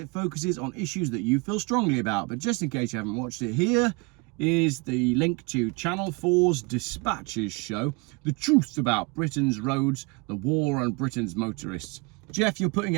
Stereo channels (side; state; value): left; quieter; 28.2 dB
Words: focuses on issues that you feel strongly about, but just in case you haven't watched it, here is the link to Channel 4's Dispatches show, The Truth About Britain's Roads, the War on Britain's Motorists. Geoff, you're putting